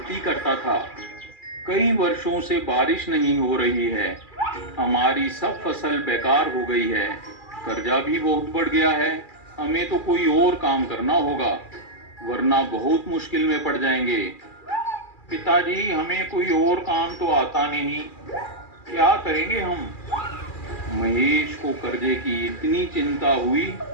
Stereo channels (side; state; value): right; late; 2.4 ms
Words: करता था। कई वर्षों से बारिश नहीं हो रही है। हमारी सब फसल बेकार हो गई है। कर्जा भी बहुत बढ़ गया है। हमें तो कोई और काम करना होगा, वरना बहुत मुश्किल में पड़ जाएंगे। पिताजी, हमें कोई और काम तो आता नहीं, क्या करेंगे हम? महेश को कर्जे की इतनी चिंता हुई